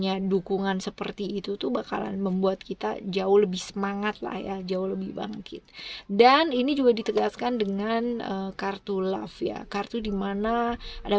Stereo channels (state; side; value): identical; both; correlation 1.00